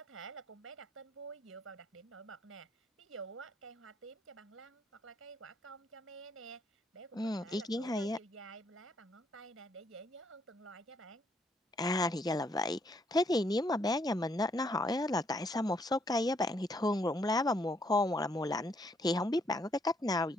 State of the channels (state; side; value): normal; both; correlation 0.71